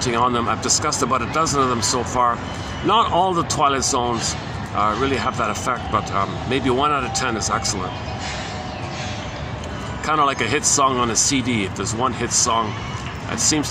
on them. I've discussed about a dozen of them so far. Not all the Twilight Zones really have that effect, but maybe 1 out of 10 is excellent. Kind of like a hit song on a CD. If there's one hit song, that seems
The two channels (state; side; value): identical; both; correlation 1.00